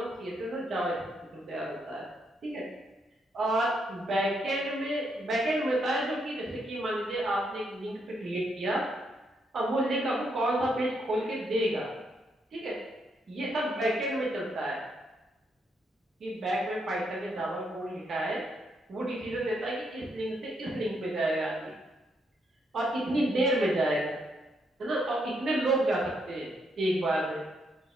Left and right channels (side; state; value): both; normal; correlation 0.77